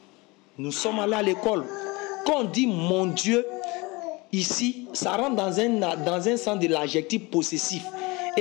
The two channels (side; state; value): right; quieter; 24.8 dB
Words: Nous sommes allés à l'école. Quand on dit mon Dieu, ici, ça rentre dans un sens de l'adjectif possessif.